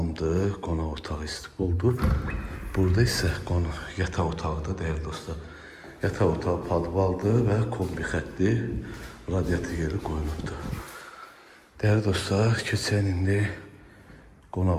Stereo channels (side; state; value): both; identical; correlation 1.00